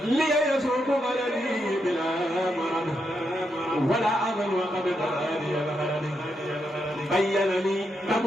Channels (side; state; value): both; normal; correlation 0.82